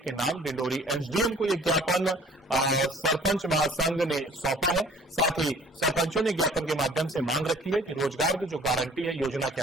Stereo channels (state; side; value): normal; both; correlation 0.52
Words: नाम डिंडोरी एसडीएम को यह ज्ञापन सरपंच महासंघ ने सौंपा है। साथ ही सरपंचों ने ज्ञापन के माध्यम से मांग रखी है कि रोजगार की जो गारंटी है योजना के